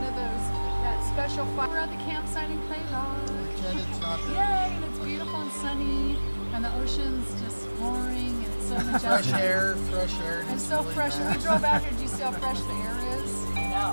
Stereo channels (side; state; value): both; inverted; correlation -1.00